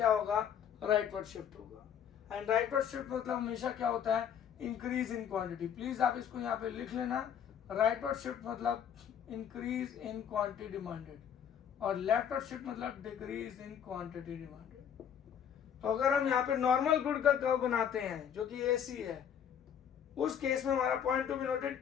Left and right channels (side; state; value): right; quieter; 8.7 dB